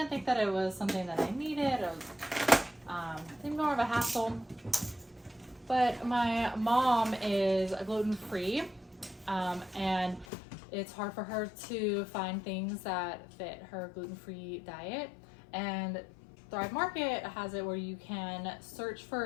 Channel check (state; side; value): drops out; right; at 10.2 s